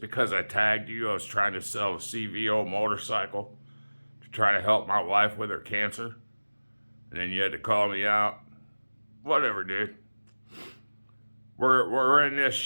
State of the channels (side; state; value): both; inverted; correlation -1.00